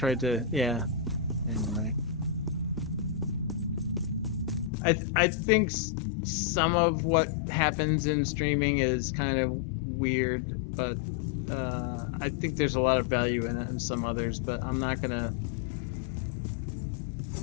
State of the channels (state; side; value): drops out; right; at 4.7 s